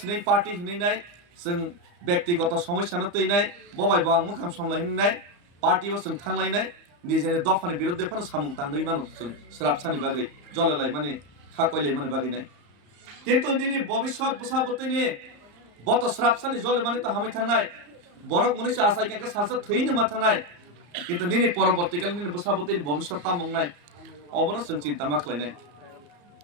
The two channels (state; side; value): late; left; 34 ms